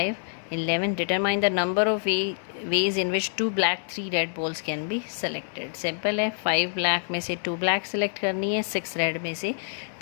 11। Determine the number of ways in which 2 black 3 red balls can be selected. Simple है, 5 black में से 2 ब्लैक सेलेक्ट करनी है, 6 रेड में से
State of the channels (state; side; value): silent; right; 60 dB below the other